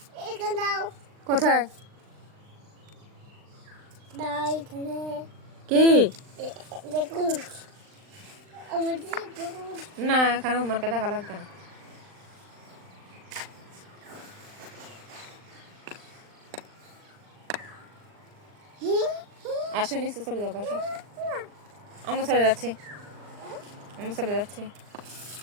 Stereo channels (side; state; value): left; late; 39 ms